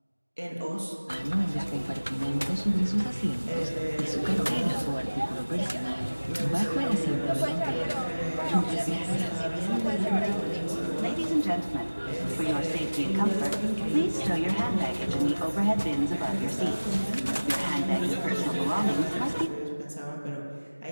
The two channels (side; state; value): both; inverted; correlation -1.00